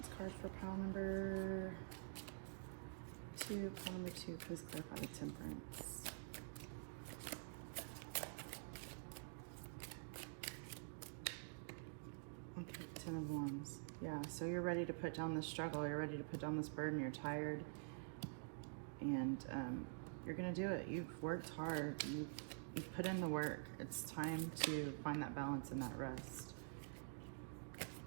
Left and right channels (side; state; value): left; silent; digital silence